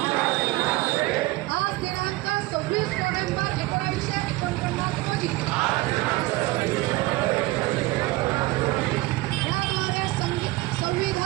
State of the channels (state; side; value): quieter; left; 20.0 dB